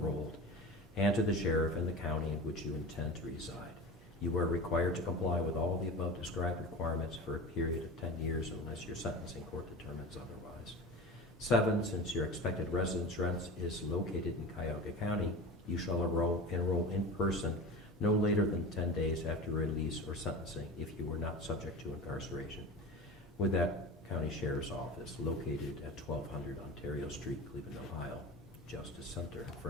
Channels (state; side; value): normal; both; correlation 0.31